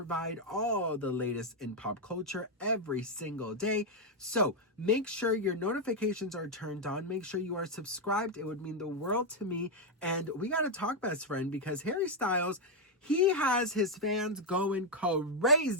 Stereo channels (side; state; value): both; normal; correlation 0.01